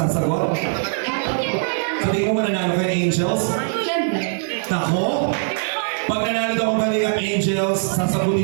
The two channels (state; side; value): silent; left; 65 dB below the other